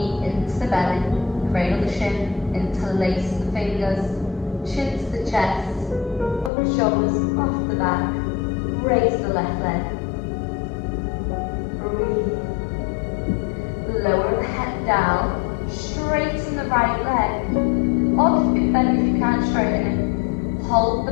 into the belly, cradle the shin, interlace the fingers, chin to the chest, up the shoulders, off the back, raise the left leg. Breathe. Lower the head down, straighten the right leg, or keep it bent if you can't straighten it. Hold the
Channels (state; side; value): drops out; right; at 6.5 s